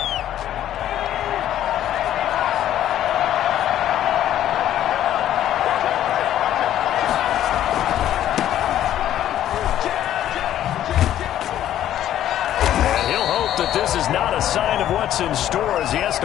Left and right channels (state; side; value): quieter; right; 11.8 dB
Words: This is not a sign of what's in store as he has